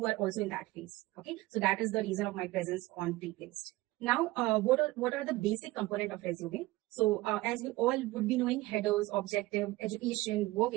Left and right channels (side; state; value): left; quieter; 19.0 dB